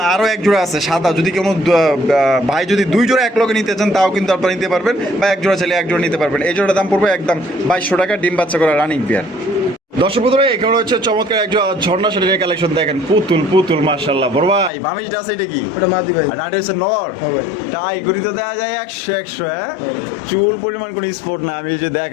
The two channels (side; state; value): right; drops out; at 14.7 s